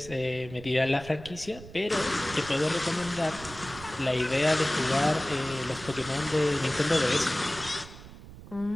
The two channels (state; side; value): noise; right; rumble, 16 dB below the sound